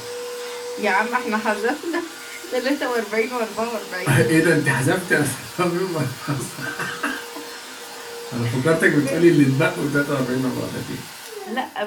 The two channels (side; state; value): both; identical; correlation 1.00